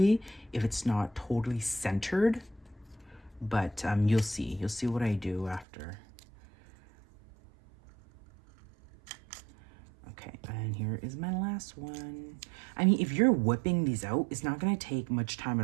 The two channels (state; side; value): drops out; left; at 5.7 s